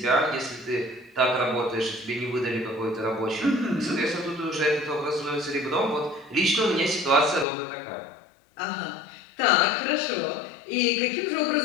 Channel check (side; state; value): right; drops out; at 7.5 s